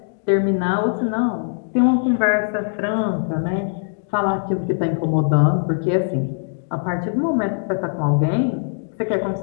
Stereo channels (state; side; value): silent; right; digital silence